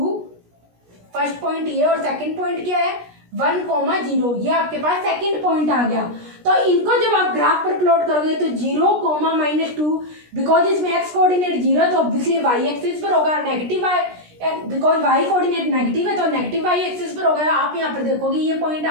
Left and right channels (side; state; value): left; late; 17 ms